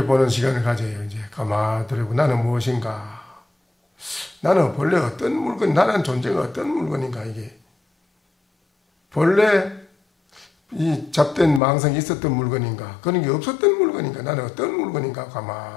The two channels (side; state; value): right; drops out; at 11.6 s